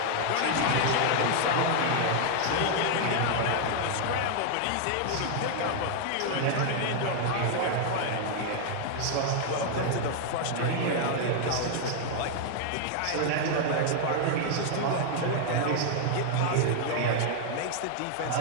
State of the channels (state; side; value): different; both; correlation 0.00